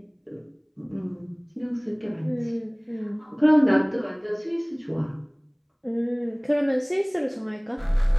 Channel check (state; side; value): identical; both; correlation 1.00